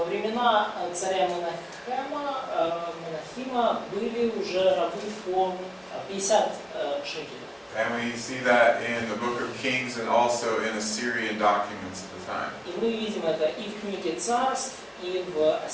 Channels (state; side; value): identical; both; correlation 1.00